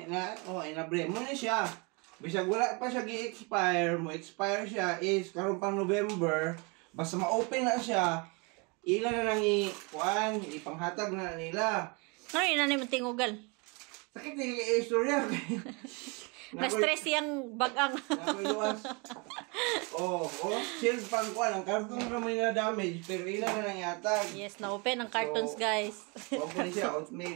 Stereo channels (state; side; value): quieter; left; 30.6 dB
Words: Inabre mo na siya. Bisag wala pa siya gi-expire mo. Expire siya is karon pang November. Basta ma-open na siya, ila na nang ipanghatag na nila. Ano yun na naman tingugal? Sakit na yung istorya. Na-stress yung bagang. Nakuiluwas. Shield pang kuhan. Ang karton na may na-damage, pero ila na nang yatag. Yes, na-open ang cartons, guys. Open siya,